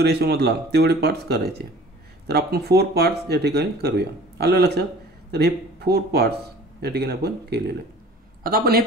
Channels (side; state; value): both; normal; correlation 0.46